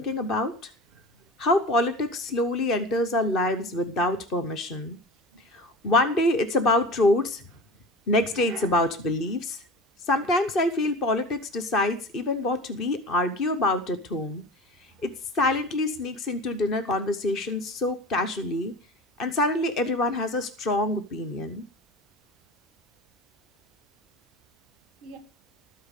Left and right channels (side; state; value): both; normal; correlation 0.33